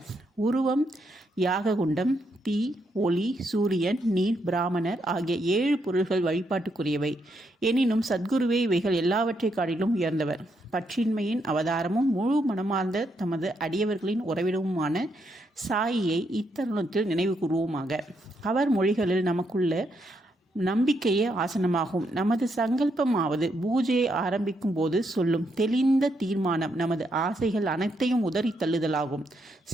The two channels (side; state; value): both; normal; correlation 0.78